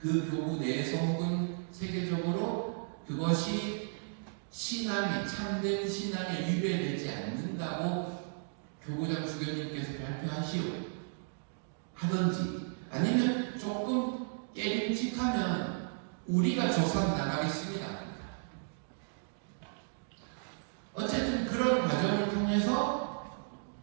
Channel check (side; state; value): left; silent; digital silence